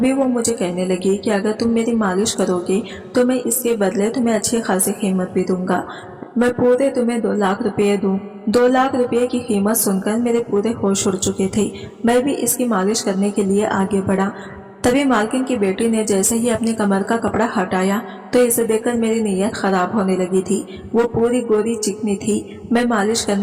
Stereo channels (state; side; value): identical; both; correlation 1.00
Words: वो मुझे कहने लगी कि अगर तुम मेरी मालिश करोगे तो मैं इसके बदले तुम्हें अच्छी खासी कीमत भी दूंगा। मैं पूरे तुम्हें 2 लाख रुपए दूं। 2 लाख रुपए की कीमत सुनकर मेरे पूरे होश उड़ चुके थे। मैं भी इसकी मालिश करने के लिए आगे बढ़ा। तभी मालकिन की बेटी ने जैसे ही अपनी कमर का कपड़ा हटाया तो इसे देखकर मेरी नीयत खराब होने लगी थी। वो पूरी गोरी चिकनी थी। मैं मालिश